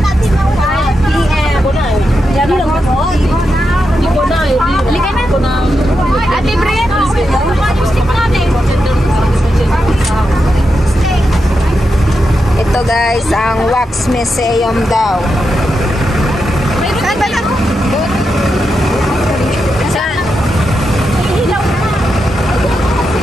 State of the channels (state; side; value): normal; both; correlation 0.86